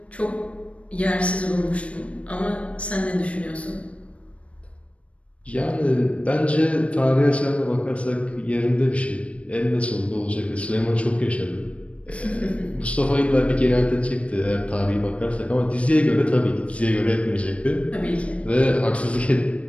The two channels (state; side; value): late; right; 0.063 ms